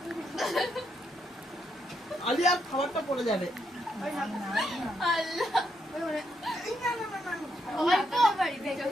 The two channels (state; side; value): normal; both; correlation 0.79